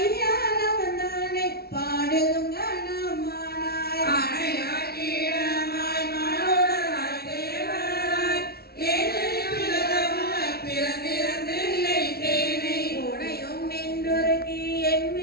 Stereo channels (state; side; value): late; right; 0.45 ms